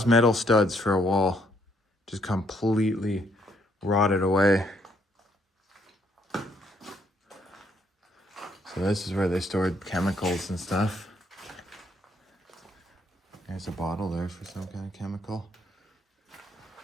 metal studs for a wall. Just completely rotted away. So this is where they stored chemicals and stuff. There's a bottle there for some kind of chemical.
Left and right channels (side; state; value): both; normal; correlation 0.70